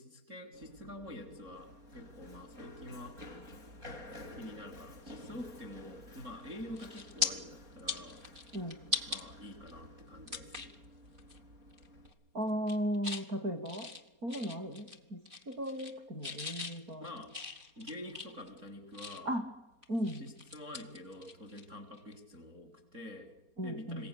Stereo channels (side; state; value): left; late; 4.3 ms